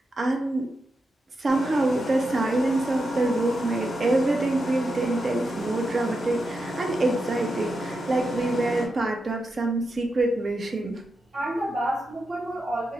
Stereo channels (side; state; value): both; normal; correlation 0.87